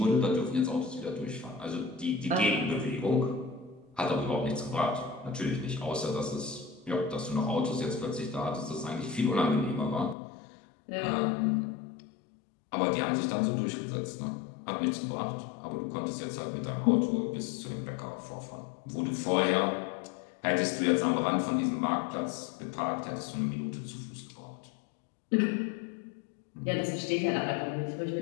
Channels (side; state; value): right; drops out; at 10.2 s